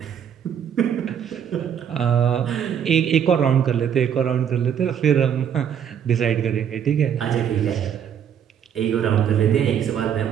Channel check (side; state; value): left; quieter; 8.6 dB